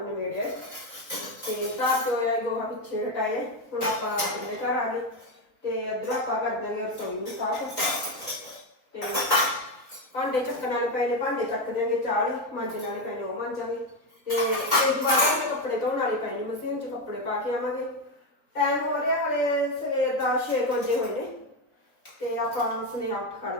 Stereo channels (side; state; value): right; late; 3.9 ms